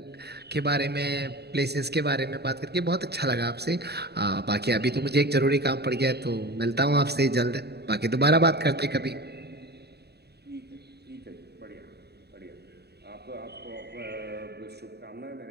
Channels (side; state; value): left; late; 0.48 ms